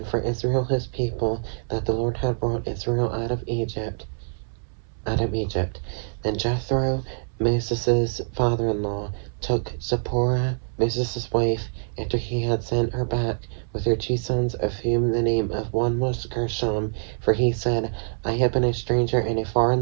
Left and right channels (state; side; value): silent; left; 62 dB below the other